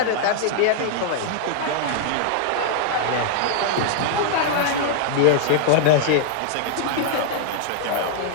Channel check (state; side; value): different; both; correlation 0.00